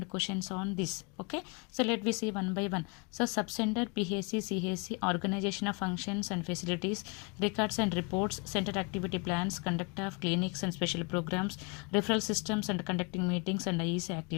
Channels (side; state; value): right; quieter; 32.0 dB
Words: questions on this. Okay, so let me see one by one. So subcenter, PHC, CHC, organization of functions and facilities, records and reports, center activity plans, conduct of clinics and special programs, referral systems and conducting meetings and IEC